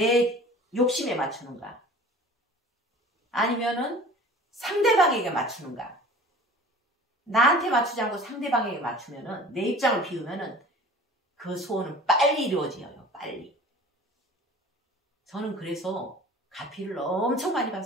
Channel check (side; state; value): both; normal; correlation 0.44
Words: 욕심에 맞추는가? 아니면은 상대방에게 맞추는가? 나한테 맞추지 않고 상대방에게 맞추면은 내 입장을 비우면은 그 소원은 빨리 이루어져요. 빨리. 저는 그래서 가피를 엄청 많이